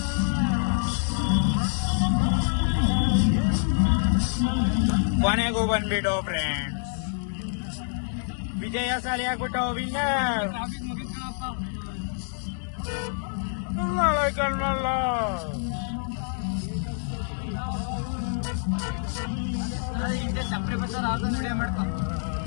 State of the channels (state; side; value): silent; right; digital silence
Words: ಕೊನೆಗೂ ಬಂದ್ಬಿಟ್ಟು ಫ್ರೆಂಡ್ಸ್, ವಿಜಯಶಾಲಿ ಆಗ್ಬಿಟ್ಟು ವಿನ್ನರ್. ಕಣ್ಣಲ್ಲ